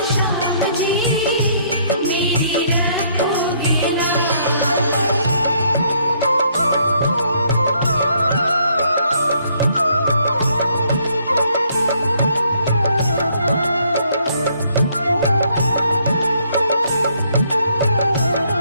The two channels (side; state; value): both; inverted; correlation -0.68